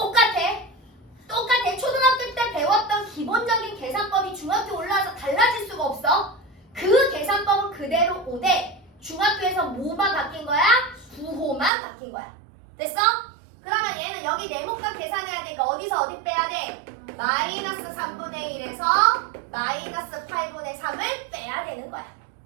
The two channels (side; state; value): left; drops out; at 11.7 s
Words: 초등학교 때 배웠던 기본적인 계산법이 중학교 올라와서 달라질 수가 없어. 그 계산법은 그대로 오되 중학교에서 뭐만 바뀐 거야? 부호만 바뀐 거야. 됐어? 그러면 얘는 여기 네모값 계산해야 되니까 어디서 어디 빼야 돼? 마이너스 3분의 1에서 마이너스 8분의 3을 빼야 되는 거야.